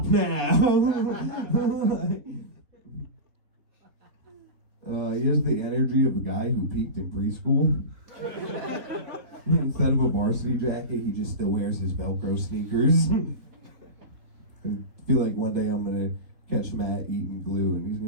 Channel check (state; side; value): late; left; 3.9 ms